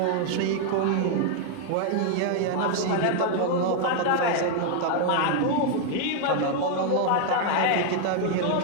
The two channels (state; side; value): different; both; correlation 0.00